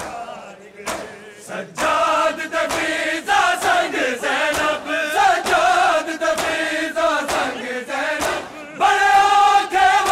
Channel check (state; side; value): identical; both; correlation 1.00